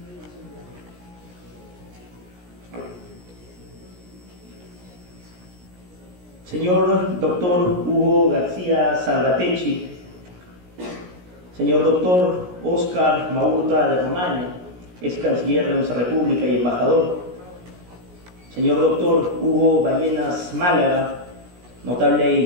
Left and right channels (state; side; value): late; left; 17 ms